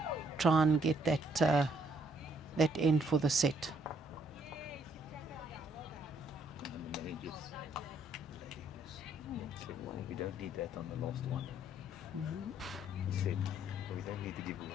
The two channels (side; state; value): both; normal; correlation 0.68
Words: try and get that end for the set. And the managers, said, well, we don't need that on the last one. He said, well, we don't need to give